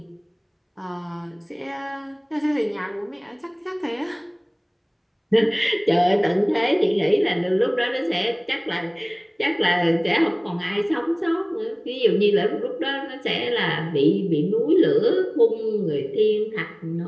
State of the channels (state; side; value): identical; both; correlation 1.00